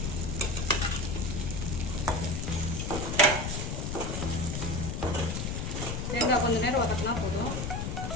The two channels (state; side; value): noise; left; rumble, 2 dB below the sound